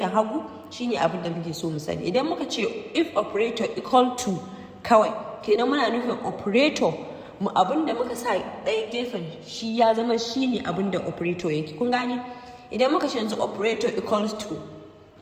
hagu, shine abin da muke so mu sani. Idan muka ce if operator equal to kawai, kenan muna nufin operator mu abin da muka sa ɗaya gefen shi ya zama shine abin da operator yake. Kun gane? Idan muka ce yanzu operator equals to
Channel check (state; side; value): identical; both; correlation 1.00